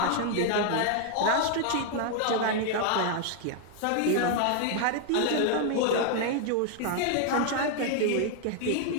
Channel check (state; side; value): different; both; correlation 0.00